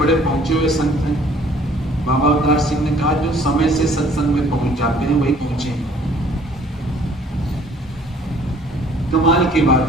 बड़े पहुंचे हुए संत हैं। बाबा अवतार सिंह ने कहा जो समय से सत्संग में पहुंच जाते हैं वही पहुंचे हैं। कमाल की बात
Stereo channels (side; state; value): both; normal; correlation 0.57